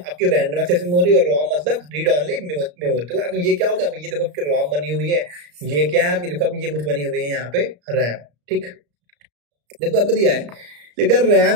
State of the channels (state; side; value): late; left; 34 ms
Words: रैंडम एक्सेस मेमोरी और रोम मतलब रीड ऑनली मेमोरी। तो अब ये क्या होगा, अब ये देखो आपकी रोम बनी हुई है, ये क्या है आपकी, देखो अब ये कुछ बनी हुई है यहाँ पे रैम, ठीक। देखो आपको दिया है, लेकिन